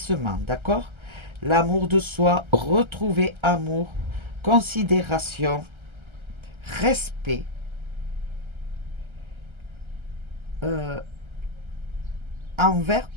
d'accord? L'amour de soi, retrouver amour, considération, respect, euh, envers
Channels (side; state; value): left; late; 1.3 ms